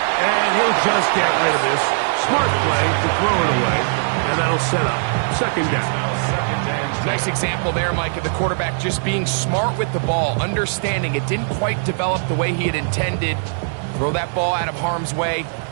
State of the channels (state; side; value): silent; left; 66 dB below the other